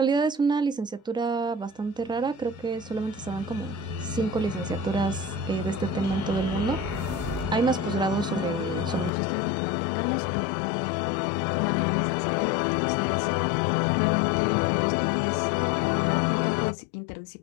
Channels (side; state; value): right; drops out; at 9.1 s